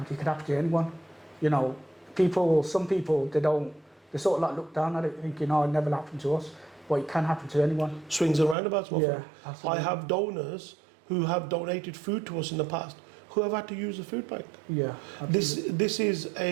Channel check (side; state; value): left; drops out; at 8.6 s